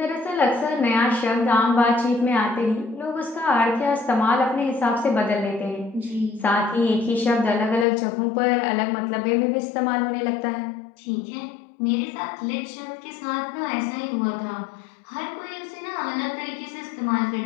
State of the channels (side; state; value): right; drops out; at 7.9 s